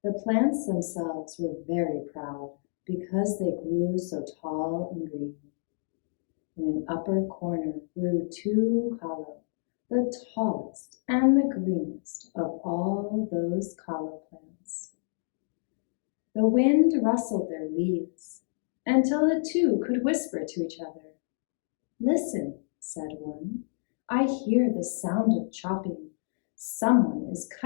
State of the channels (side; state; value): right; silent; digital silence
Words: The plants themselves were very proud because they grew so tall and green. In an upper corner grew two kalo, the tallest and the greenest of all those kalo plants. The wind rustled their leaves until the two could whisper to each other. "Listen," said one, "I hear the sound of chopping. Someone is